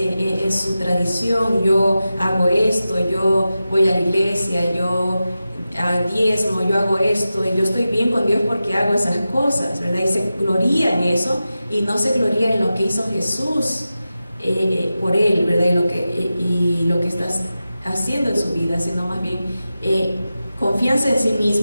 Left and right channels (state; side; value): inverted; both; correlation -0.93